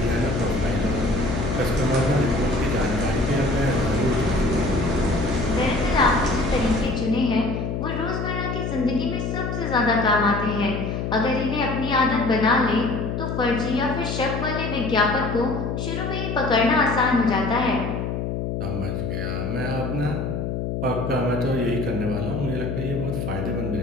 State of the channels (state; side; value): noise; left; hum, 2 dB below the sound